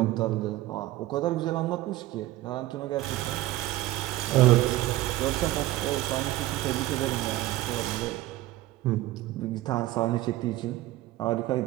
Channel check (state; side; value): quieter; left; 16.3 dB